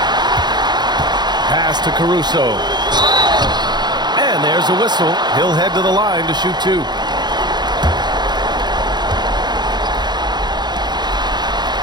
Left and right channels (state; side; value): late; left; 0.21 ms